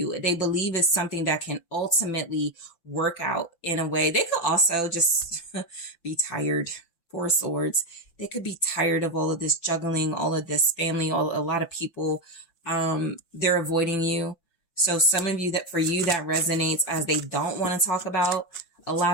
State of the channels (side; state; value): right; late; 5.9 ms